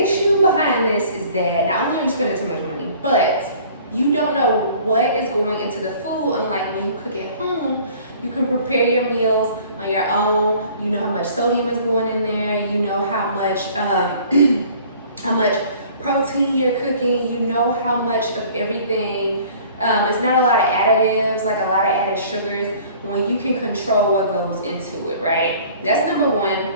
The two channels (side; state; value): both; inverted; correlation -0.51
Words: issue behind this is that not only are you spending too much money, but you don't know what is going into the food. Unlike when you cook at home, you can prepare your meals on your own. You know how much sodium is going in there. You know how much protein you're cooking. You know how much of everything. It's not a lot of additives, like a lot of added sugars, when you can control what goes into it, right? That's number one.